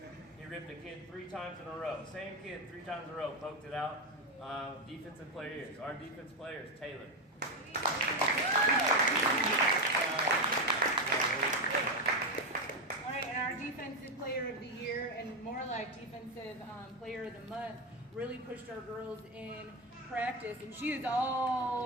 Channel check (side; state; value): both; normal; correlation 0.11